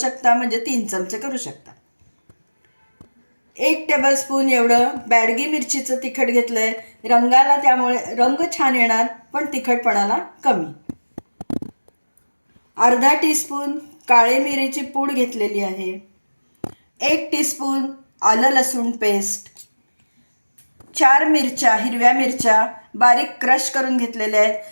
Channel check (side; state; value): both; inverted; correlation -1.00